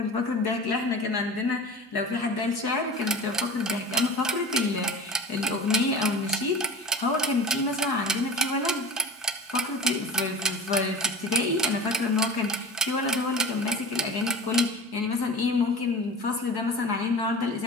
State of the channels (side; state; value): both; normal; correlation 0.32